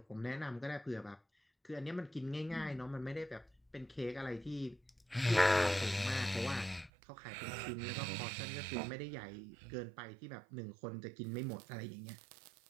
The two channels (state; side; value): drops out; left; at 6.9 s